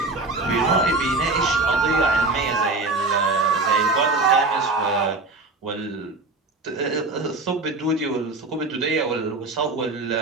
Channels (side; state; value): left; quieter; 3.3 dB